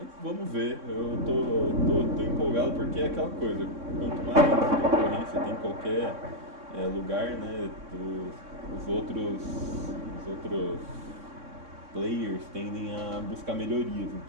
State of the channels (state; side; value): late; left; 3.6 ms